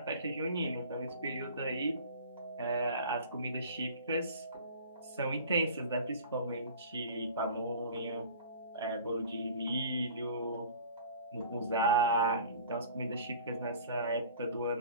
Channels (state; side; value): inverted; both; correlation -0.44